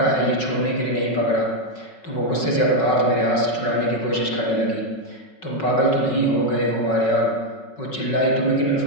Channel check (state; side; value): late; right; 5.4 ms